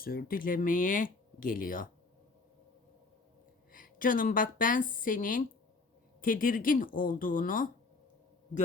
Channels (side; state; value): right; quieter; 3.9 dB